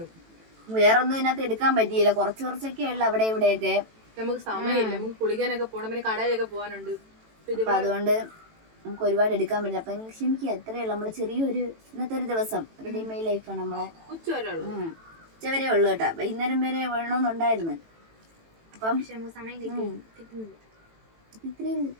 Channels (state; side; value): late; left; 18 ms